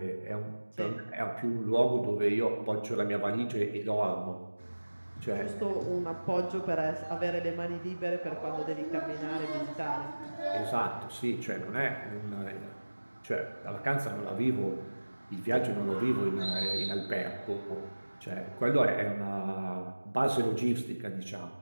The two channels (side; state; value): both; inverted; correlation -1.00